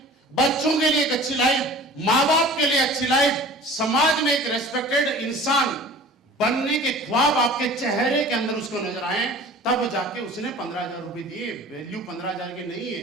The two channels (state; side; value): normal; both; correlation 0.43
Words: बच्चों के लिए एक अच्छी लाइफ, मां बाप के लिए अच्छी लाइफ, समाज में एक रेस्पेक्टेड इंसान बनने के ख्वाब आपके चेहरे के अंदर उसको नजर आए, तब जाके उसने 15,000 रुपए दिए। वैल्यू 15,000 के नहीं है।